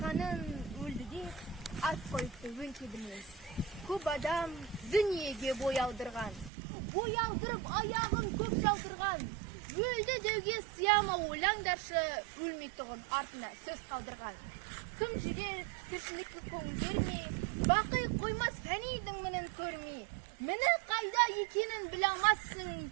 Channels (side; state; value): left; drops out; at 6.5 s